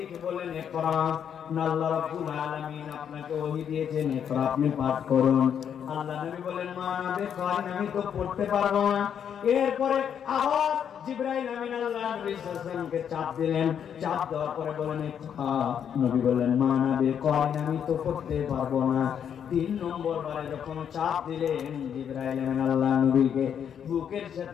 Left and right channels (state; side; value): quieter; right; 8.4 dB